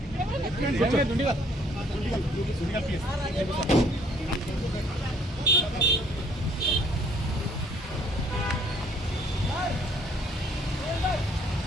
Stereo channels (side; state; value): both; normal; correlation 0.62